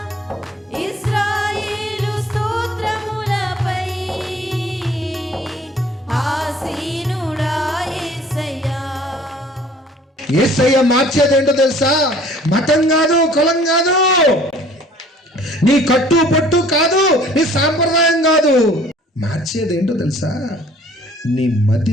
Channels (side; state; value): both; normal; correlation 0.53